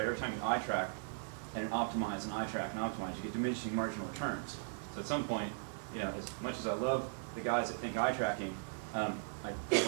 Every time you eye track and optimize and eye track and optimize, you get diminishing marginal returns. So at some point, as much as I love the guys that think eye tracking, I don't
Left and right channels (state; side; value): silent; left; digital silence